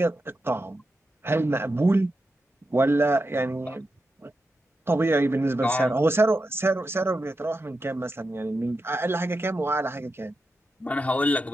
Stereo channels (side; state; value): both; normal; correlation 0.88